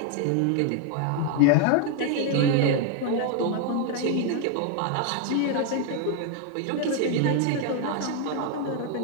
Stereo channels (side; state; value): both; different; correlation 0.00